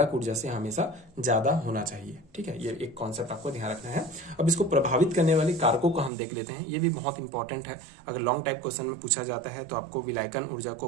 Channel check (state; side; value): drops out; left; at 6.1 s